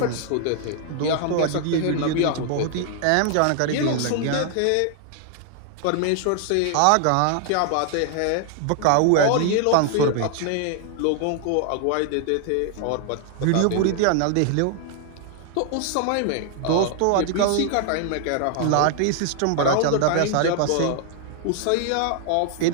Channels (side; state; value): both; different; correlation 0.00